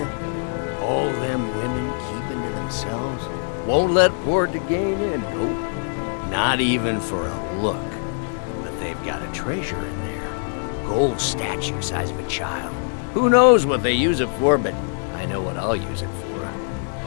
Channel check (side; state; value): right; silent; digital silence